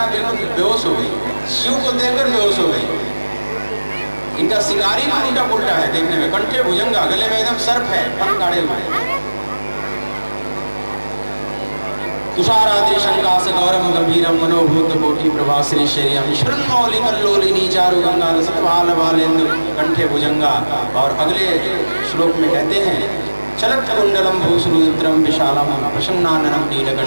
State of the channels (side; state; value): both; inverted; correlation -1.00